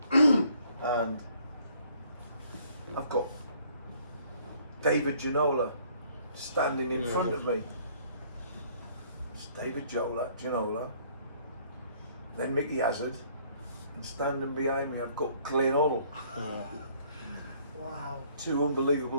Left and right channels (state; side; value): inverted; both; correlation -0.61